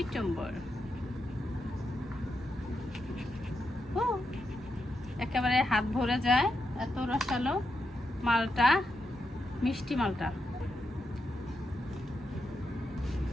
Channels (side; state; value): both; normal; correlation 0.84